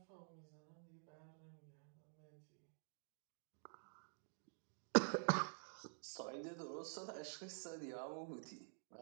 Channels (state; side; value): silent; left; digital silence